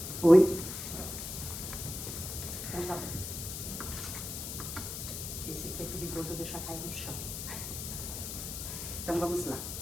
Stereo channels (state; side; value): noise; left; hiss, 6 dB below the sound